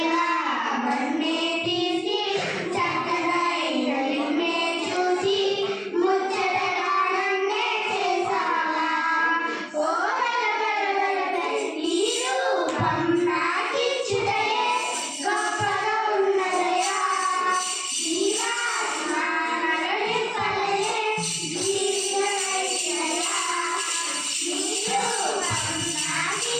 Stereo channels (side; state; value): both; identical; correlation 1.00